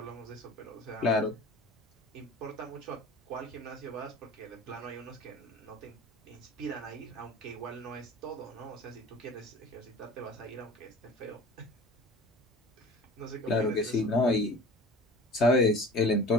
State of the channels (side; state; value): both; normal; correlation 0.40